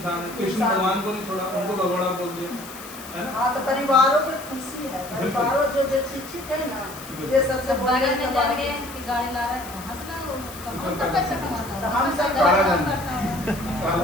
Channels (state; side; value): noise; left; hiss, 15 dB below the sound